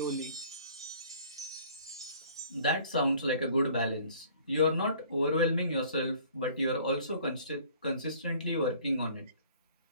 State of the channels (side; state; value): both; inverted; correlation -0.53